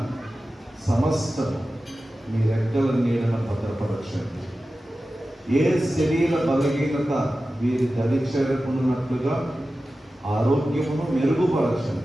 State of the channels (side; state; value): both; normal; correlation 0.94